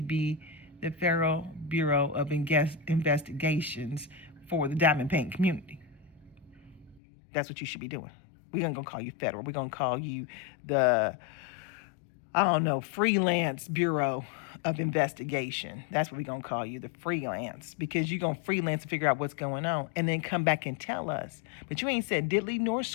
the Federal Bureau of Investigations for the diamond painting community. That's what you should be doing. We're not going to call you federal. We're going to call you the freelance Bureau of Investigation. That's what we're going to call you, the freelance, because you're going to freelance and figure out what's going on and then come back and tell us. But you ain't said diddly nor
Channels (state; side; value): drops out; right; at 7.0 s